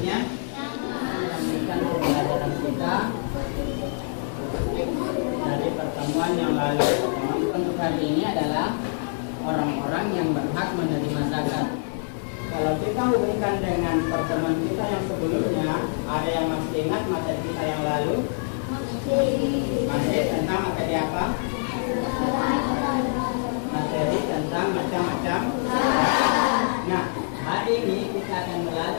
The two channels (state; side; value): silent; right; digital silence